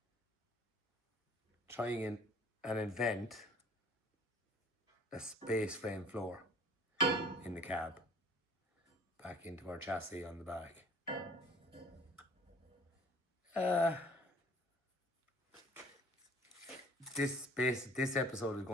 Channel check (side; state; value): both; normal; correlation 0.51